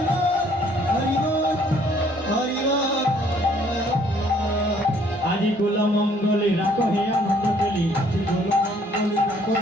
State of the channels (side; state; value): both; normal; correlation 0.62